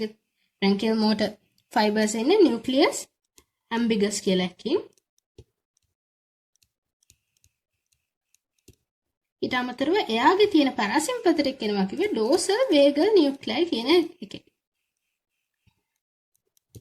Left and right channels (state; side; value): identical; both; correlation 1.00